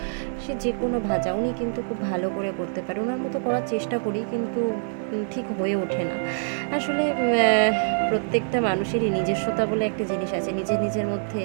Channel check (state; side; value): silent; left; 62 dB below the other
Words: সে যে কোনো ভাজা উনি কিন্তু খুব ভালো করে করতে পারে। ওনার মতো করার চেষ্টা করি, কিন্তু ঠিক হয়ে ওঠে না আসলে। প্রত্যেকটা মানুষেরই নিজস্বতা বলে একটা জিনিস আছে, নিজের নিজের মধ্যে